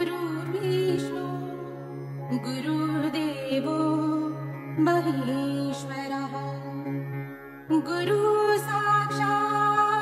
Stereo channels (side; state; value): both; identical; correlation 1.00